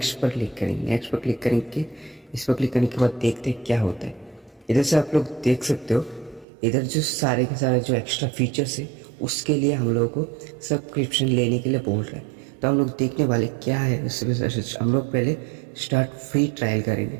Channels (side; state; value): left; drops out; at 6.5 s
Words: पर क्लिक करेंगे। नेक्स्ट पर क्लिक करेंगे, इस पर क्लिक करने के बाद देखते हैं क्या होता है। इधर से आप लोग देख सकते हो, इधर जो सारे के सारे जो एक्स्ट्रा फीचर्स है उसके लिए हम लोगों को सब्सक्रिप्शन लेने के लिए बोल रहे हैं। तो हम लोग देखने वाले क्या है उससे हम लोग पहले स्टार्ट फ्री ट्रायल करेंगे।